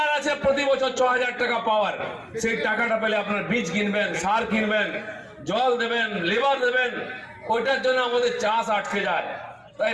আছে প্রতি বছর 6000 টাকা পাওয়ার। সেই টাকাটা পেলে আপনার বীজ কিনবেন, সার কিনবেন, জল দেবেন, লেবার দেবেন। ওইটার জন্য আমাদের চাষ আটকে যায়। তাই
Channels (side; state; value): both; identical; correlation 1.00